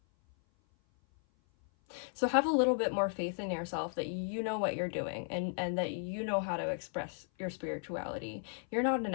So have a little bit more faith in yourself that you know what you're doing, and that you know how to express your spirituality. You're not an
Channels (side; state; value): right; silent; 54 dB below the other